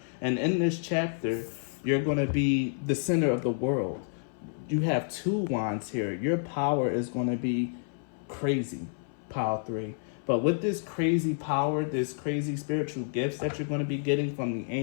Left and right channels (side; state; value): right; silent; 58 dB below the other